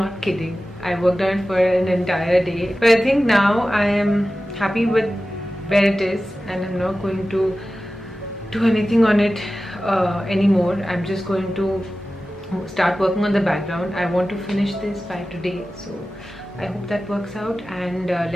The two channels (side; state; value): both; normal; correlation 0.95